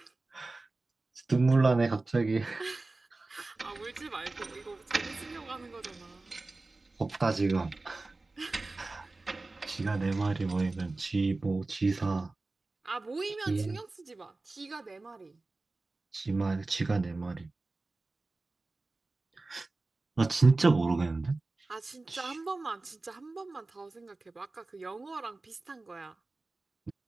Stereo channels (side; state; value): left; quieter; 3.3 dB